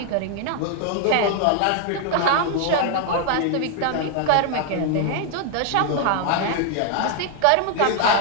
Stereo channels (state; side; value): different; both; correlation 0.00